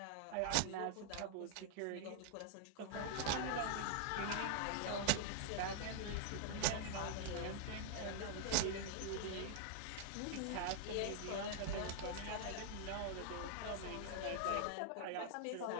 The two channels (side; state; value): both; different; correlation -0.01